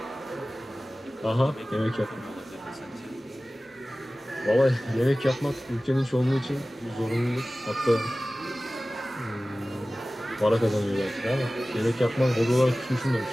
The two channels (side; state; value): both; normal; correlation 0.97